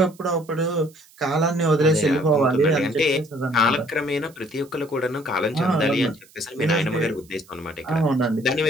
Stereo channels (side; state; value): right; noise; hiss, 27 dB below the sound